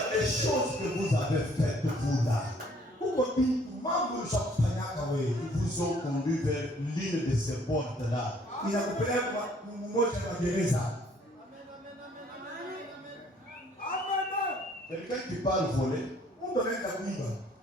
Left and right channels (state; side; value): normal; both; correlation 0.61